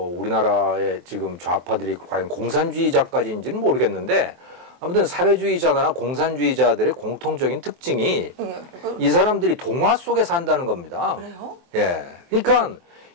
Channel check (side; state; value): left; late; 23 ms